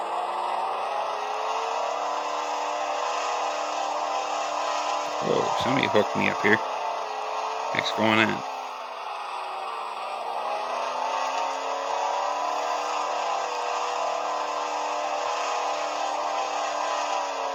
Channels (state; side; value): identical; both; correlation 1.00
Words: Whoa, somebody hooked me up here. What's going on?